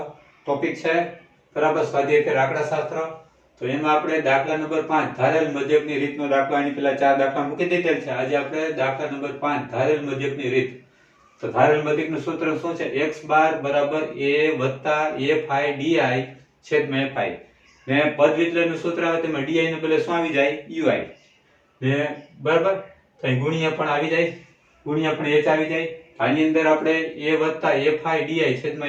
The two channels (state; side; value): identical; both; correlation 1.00